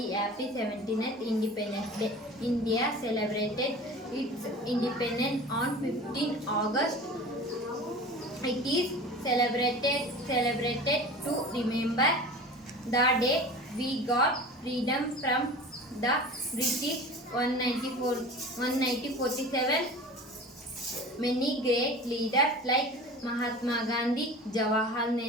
happy 79th Independence Day. India celebrated its independence on 15 August. It is celebrated to remember the day we got freedom from the British 1947. Many great leaders like Mahatma Gandhi, Jawaharlal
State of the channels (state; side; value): normal; both; correlation 0.37